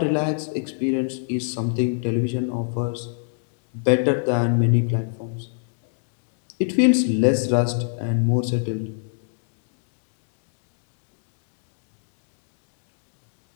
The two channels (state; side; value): silent; right; digital silence